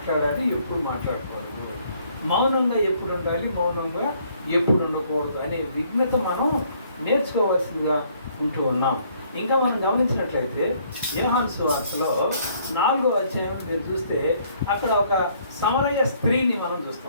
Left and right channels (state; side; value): inverted; both; correlation -0.64